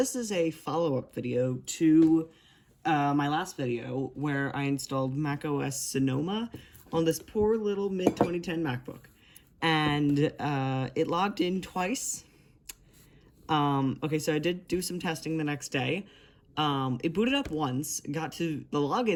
is a follow-up video to my last video where I installed macOS Sonoma on this poor little mid-2010 MacBook. And it logged in twice. Okay, so I did do some testing the next day. It booted up once, got to the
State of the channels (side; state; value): both; identical; correlation 1.00